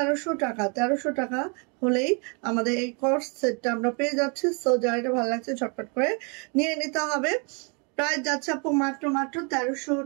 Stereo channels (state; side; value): quieter; left; 34.7 dB